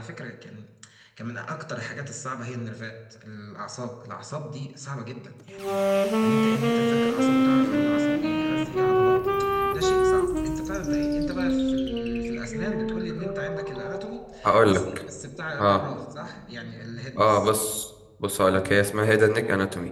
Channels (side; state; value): both; identical; correlation 1.00